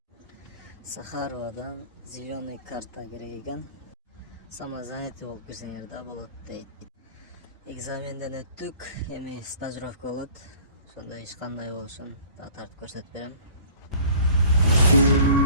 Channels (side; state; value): both; inverted; correlation -0.49